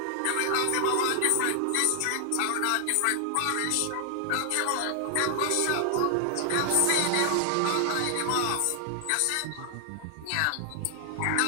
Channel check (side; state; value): both; different; correlation 0.00